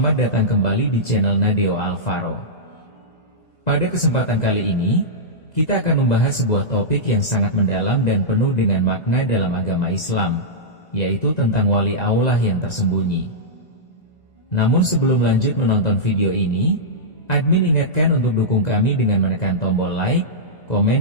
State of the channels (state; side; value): late; right; 1.9 ms